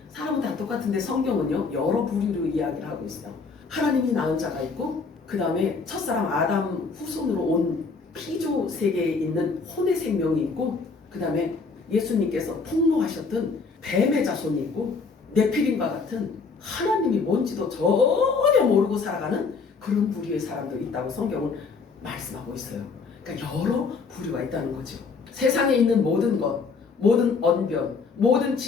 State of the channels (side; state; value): right; quieter; 4.7 dB